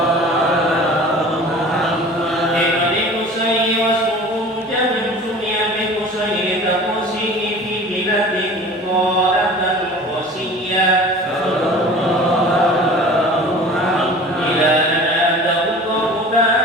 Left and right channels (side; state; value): both; normal; correlation 0.42